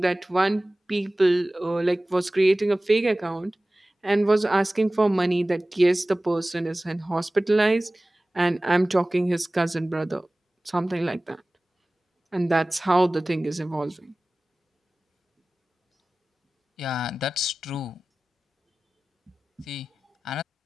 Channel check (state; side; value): normal; both; correlation 0.98